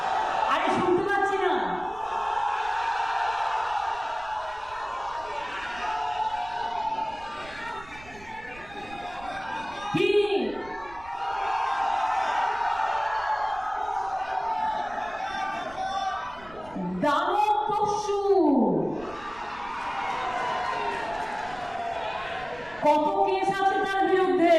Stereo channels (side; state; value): right; noise; rumble, 20 dB below the sound